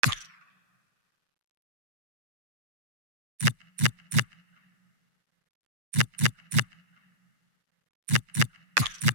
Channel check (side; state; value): left; late; 8.3 ms